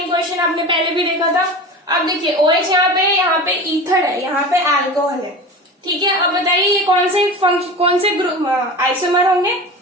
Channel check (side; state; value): both; normal; correlation 0.32